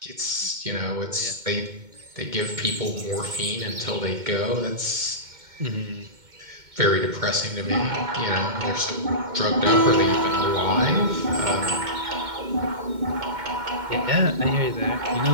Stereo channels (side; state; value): left; late; 2.2 ms